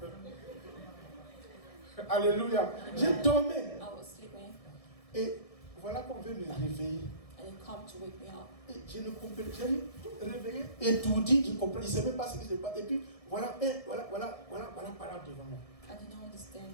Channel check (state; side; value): late; right; 1.6 ms